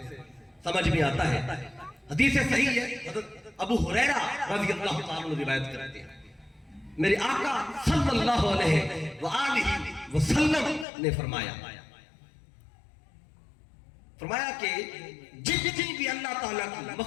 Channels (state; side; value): drops out; right; at 10.9 s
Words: سمجھ میں آتا ہے۔ حدیث صحیح ہے، حضرت ابو ہریرہ رضی اللہ تعالیٰ عنہ روایت کرتے ہیں، میرے آقا صلی اللہ علیہ وآلہ وسلم نے فرمایا کہ جتنی بھی اللہ تعالیٰ کی